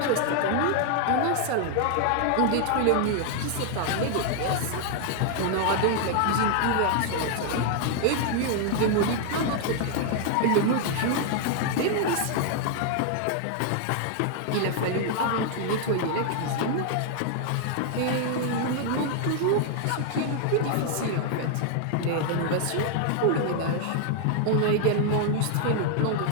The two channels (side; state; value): both; different; correlation 0.00